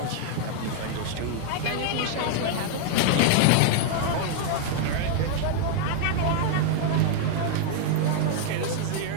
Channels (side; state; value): both; different; correlation 0.00